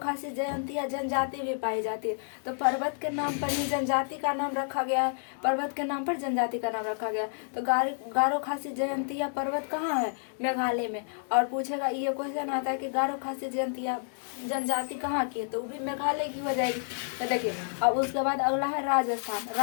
जयंतियाँ जनजाति भी पाई जाती है। तो पर्वत के नाम पर ही जनजाति का नाम रखा गया है। पर्वत के नाम पर जनजाति का नाम रखा गया। तो गारो खासी जयंतियाँ पर्वत कहाँ है? मेघालय में। और पूछेगा, ये क्वेश्चन आता है कि गारो खासी जयंतियाँ जनजाति कहाँ की है? तो वो भी मेघालय की हो जाएगी। तो देखिए, अब उसके बाद अगला है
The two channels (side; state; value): right; silent; digital silence